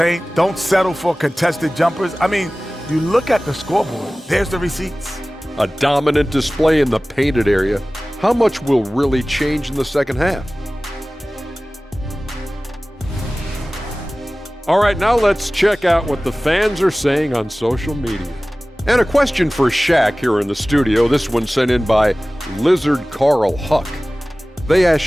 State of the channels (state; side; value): normal; both; correlation 0.98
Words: Don't settle for contested jumpers. I mean, you look at the scoreboard. There's the receipts. A dominant display in the painted area. How much will really change in the second half? All right, now let's check out what the fans are saying on social media. And a question for Shaq here in the studio. This one sent in by Lizard Carl Huck. They asked